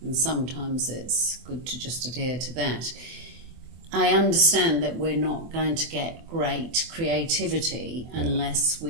sometimes it's good to just adhere to that. I understand that we're not going to get great creativity unless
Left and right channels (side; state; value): left; late; 24 ms